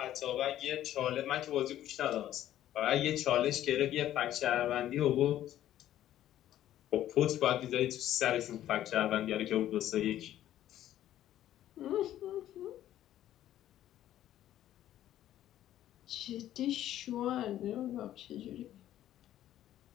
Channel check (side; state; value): right; quieter; 12.5 dB